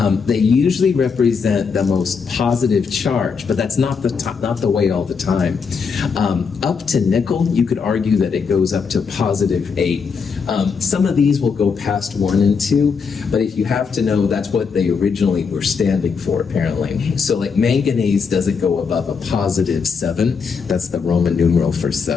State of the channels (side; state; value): right; quieter; 5.7 dB